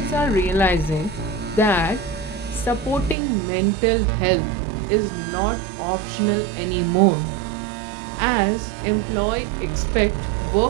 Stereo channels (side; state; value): left; drops out; at 3.2 s